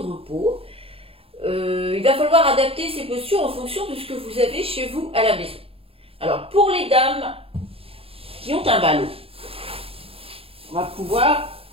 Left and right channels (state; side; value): late; left; 0.27 ms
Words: repos. Il va falloir adapter ces postures en fonction de ce que vous avez chez vous à la maison. Alors, pour les dames qui ont un ballot, on va pouvoir